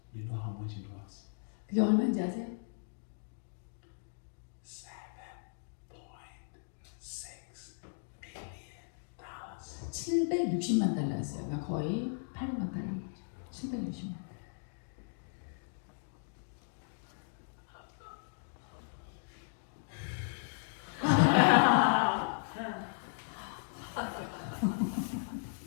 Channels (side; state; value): right; silent; digital silence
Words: You know how much it was? 그게 얼마인지 아세요? $7.6 million. 760만 달러였어요. 그러니까 거의 800만 달러인 거죠. 760만.